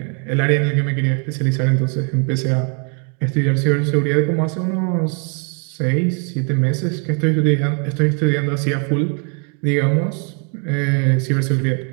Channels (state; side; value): quieter; left; 39.3 dB